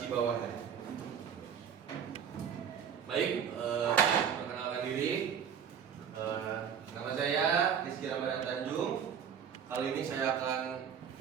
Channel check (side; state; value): left; quieter; 7.9 dB